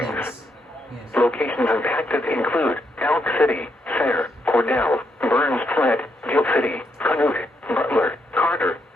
Locations impacted include Elk City, Sayre, Cordell, Burns Flat, Gill City, Canute, Butler, Carter,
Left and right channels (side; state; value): both; normal; correlation 0.78